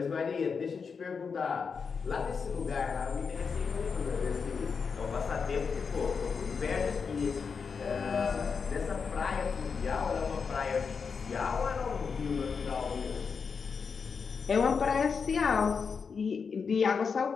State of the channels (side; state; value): right; quieter; 5.7 dB